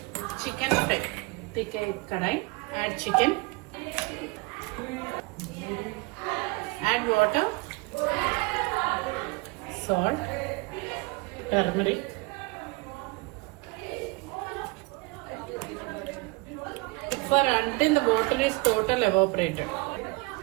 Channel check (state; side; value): quieter; left; 25.8 dB